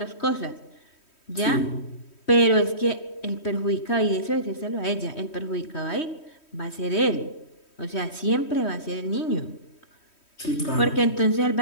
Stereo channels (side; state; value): right; late; 3.1 ms